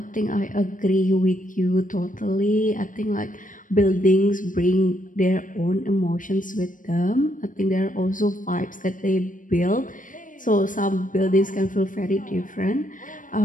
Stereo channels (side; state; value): right; late; 0.38 ms